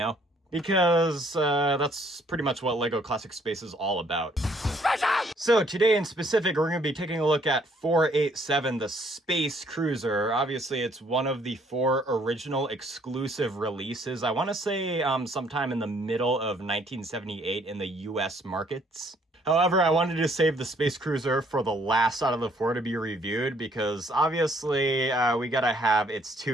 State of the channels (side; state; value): both; normal; correlation 0.64